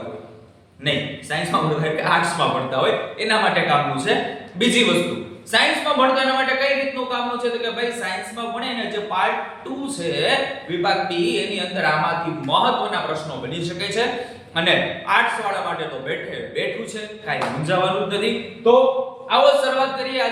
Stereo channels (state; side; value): identical; both; correlation 1.00